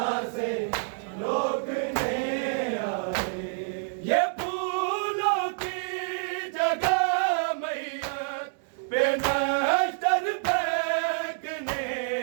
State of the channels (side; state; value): left; silent; digital silence